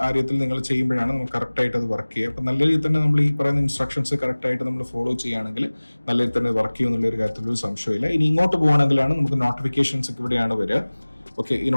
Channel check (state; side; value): inverted; both; correlation -1.00